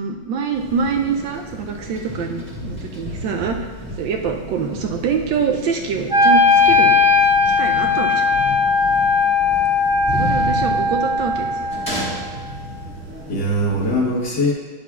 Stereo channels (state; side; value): normal; both; correlation 0.28